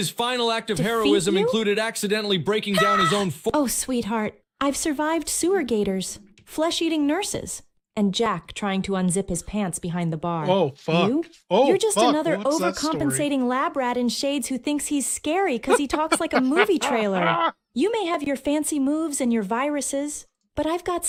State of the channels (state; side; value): identical; both; correlation 1.00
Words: final act of Defeat heroism you? included accidentally breaking down his own Oh, sweetheart, I've survived sewer gators, flesh-eating nurses, and Jack trying to unzip his pants behind the bar. Oh, fuck. You? Oh, You're just fuck. another What's that story? overcompensating lab rat in shades who thinks he's scary because he talks like a movie trailer. You may have your fancy moves and your viruses, but I've got